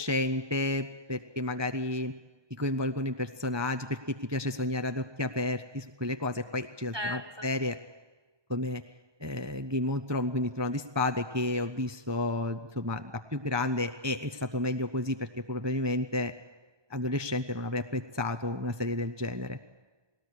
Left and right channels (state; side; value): late; left; 1.2 ms